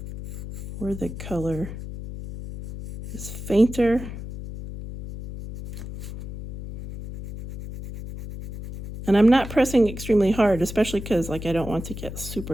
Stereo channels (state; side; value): noise; left; hum, 10 dB below the sound